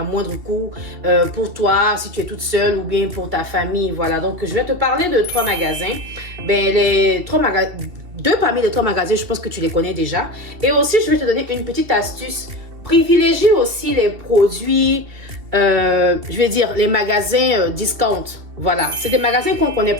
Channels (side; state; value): left; late; 2.7 ms